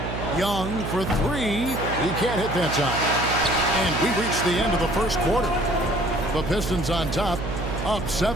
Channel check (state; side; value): noise; right; hum, 5 dB below the sound